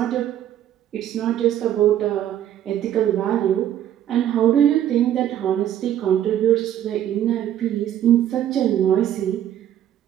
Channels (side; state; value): left; quieter; 11.1 dB